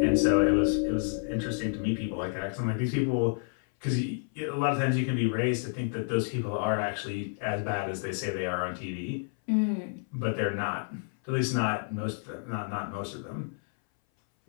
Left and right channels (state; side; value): silent; right; 58 dB below the other